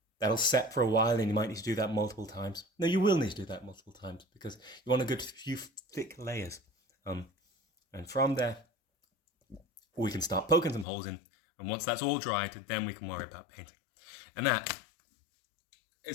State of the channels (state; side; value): drops out; right; at 10.9 s